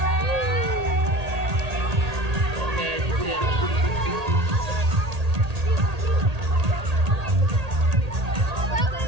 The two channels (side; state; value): left; late; 1.8 ms